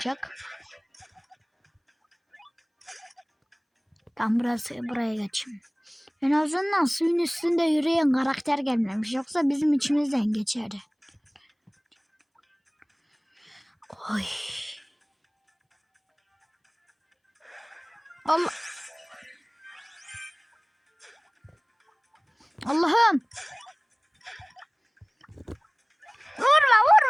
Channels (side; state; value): both; identical; correlation 1.00